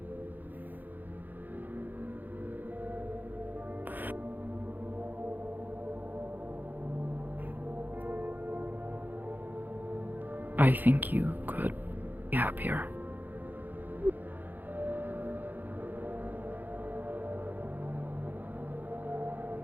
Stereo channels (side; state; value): left; late; 0.086 ms